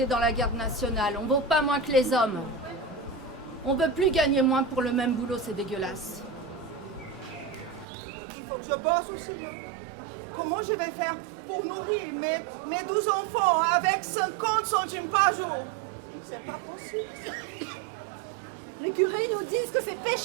dans la garde nationale. On vaut pas moins que les hommes. On veut plus gagner moins pour le même boulot, c'est dégueulasse. Il faut que je bosse aussi, hein? comment je vais faire pour nourrir mes 12 enfants avec 50 centimes par jour? C'est pas possible, ça. Les curés nous disent que c'est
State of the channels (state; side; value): drops out; left; at 7.9 s